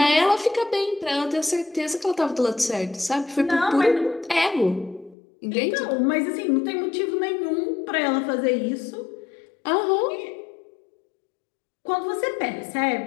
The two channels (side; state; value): right; drops out; at 5.2 s